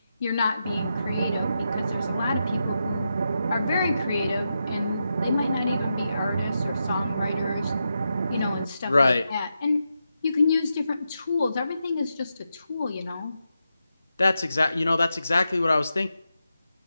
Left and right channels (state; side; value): inverted; both; correlation -0.87